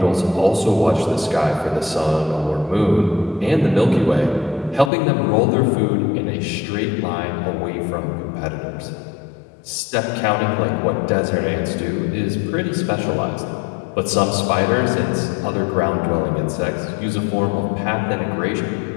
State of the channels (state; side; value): drops out; right; at 4.9 s